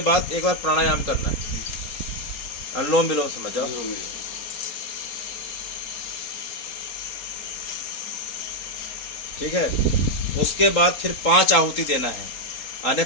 बाद एक बार प्राणायाम करना है, अनुलोम विलोम समझ जाओ। ठीक है। उसके बाद फिर 5 आहुति देना है, यानी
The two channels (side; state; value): right; late; 4.3 ms